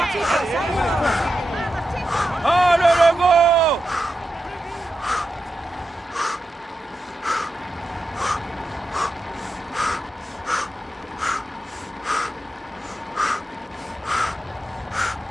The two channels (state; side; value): normal; both; correlation 0.89